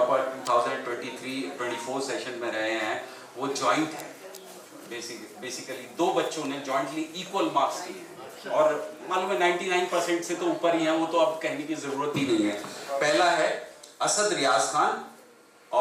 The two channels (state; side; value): identical; both; correlation 1.00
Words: 2023-24 सेशन में रहे हैं वो जॉइंट है। बेसिकली 2 बच्चों ने जॉइंटली इक्वल मार्क्स किए हैं और मालूम है 99% से तो ऊपर ही हैं, वो तो अब कहने की ज़रूरत ही नहीं है। पहला है असद रियाज खान